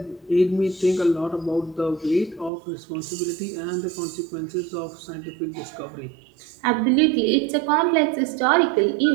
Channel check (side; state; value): left; drops out; at 2.5 s